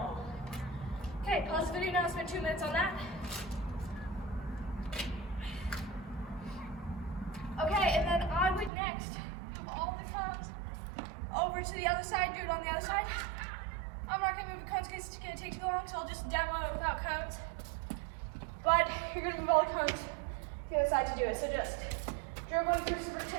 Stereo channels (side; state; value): left; drops out; at 8.7 s